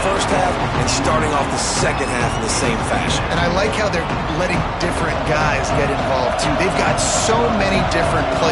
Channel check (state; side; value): identical; both; correlation 1.00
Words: first half and starting off the second half in the same fashion. And I like how they're letting different guys get involved, too. They've got so many different